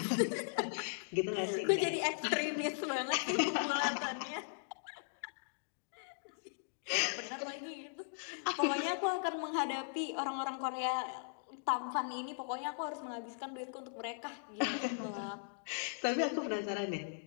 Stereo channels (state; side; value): silent; right; digital silence